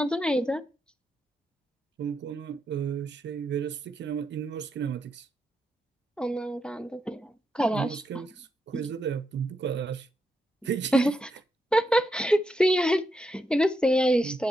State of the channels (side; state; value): both; normal; correlation 0.82